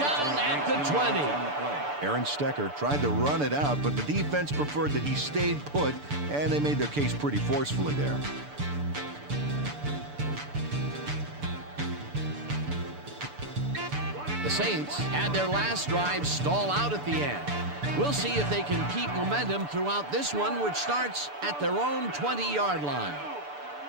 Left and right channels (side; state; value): left; late; 6.9 ms